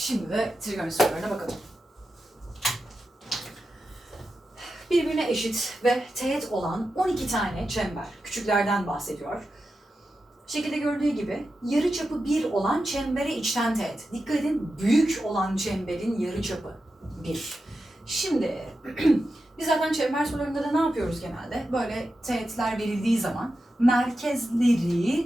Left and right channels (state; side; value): normal; both; correlation 0.90